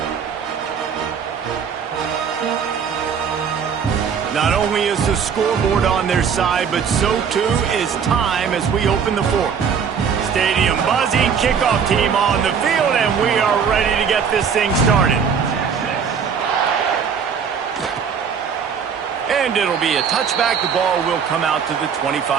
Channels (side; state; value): left; quieter; 6.8 dB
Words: Not only is the scoreboard on their side, but so too is time as we open the 4th. Stadium buzzing, kickoff team on the field, and we are ready to get this thing started. And it'll be a touchback. The ball will come out to the